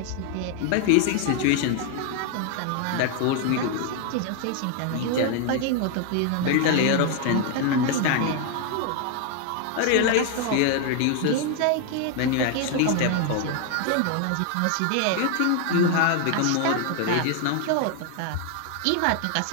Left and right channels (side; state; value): both; different; correlation 0.00